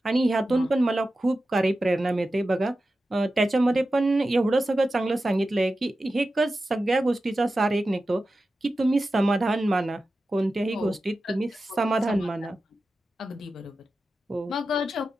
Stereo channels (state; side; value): normal; both; correlation 0.93